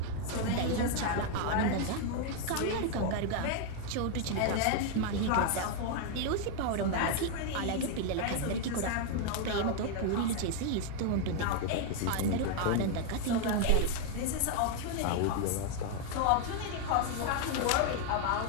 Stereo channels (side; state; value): both; different; correlation 0.01